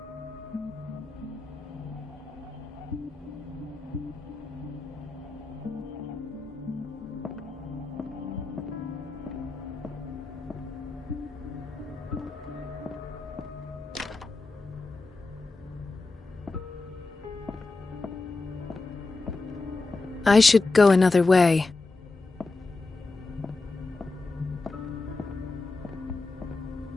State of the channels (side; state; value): right; quieter; 3.5 dB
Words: I should go another way.